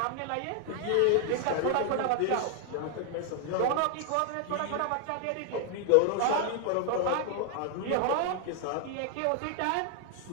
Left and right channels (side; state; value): both; different; correlation 0.00